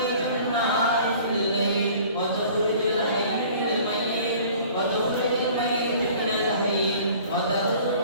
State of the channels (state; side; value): inverted; both; correlation -0.49